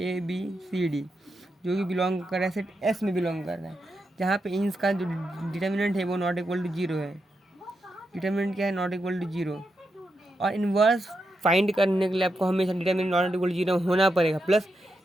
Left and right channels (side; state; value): both; normal; correlation 0.85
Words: ABCD जो कि बिलोंग कर रहा है सेट S में बिलोंग कर रहा है, जहाँ पे इंस का जो डिटरमिनेंट है वो नॉट इक्वल टू जीरो है। डिटरमिनेंट क्या है, नॉट इक्वल टू जीरो। और इन्वर्स फाइंड करने के लिए आपको हमेशा determinant not equal to zero होना पड़ेगा, प्लस